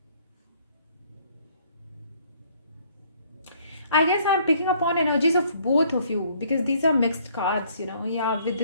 I guess I'm picking up on energies of both of you because these are mixed cards, you know. Yeah, with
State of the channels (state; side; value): inverted; both; correlation -0.62